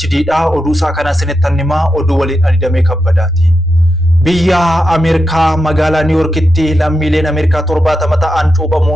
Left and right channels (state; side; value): normal; both; correlation 0.87